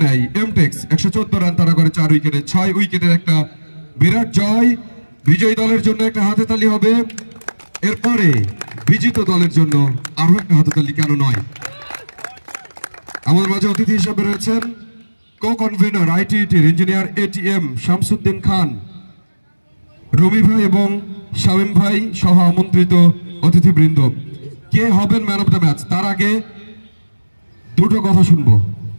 নেয় এমটেক্স। 114 রান তারা করে 4 উইকেটে। 6 উইকেটের একটা বিরাট জয়। বিজয়ী দলের জন্য একটা হাতে তালি হবে, এরপরে বিজিত দলের জন্য আরো একটা হাতে তালি কেন নয়। আমাদের মাঝে অতিথি হিসেবে রয়েছেন কো কনভেনর আইটিটির ইঞ্জিনিয়ার এটিএম শামসুদ্দিন খান, রবি ভাই এবং শামীম ভাই সহ আমন্ত্রিত অতিথিবৃন্দ। কে হবেন ম্যান অফ দ্য ম্যাচ তার আগে দুটো কথা শুনবো,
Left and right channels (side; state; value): both; inverted; correlation -1.00